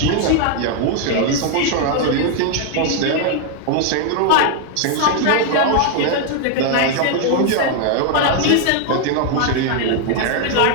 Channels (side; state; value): both; different; correlation 0.01